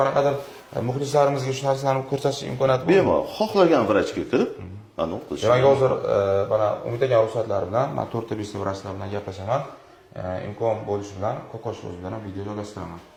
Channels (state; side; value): identical; both; correlation 1.00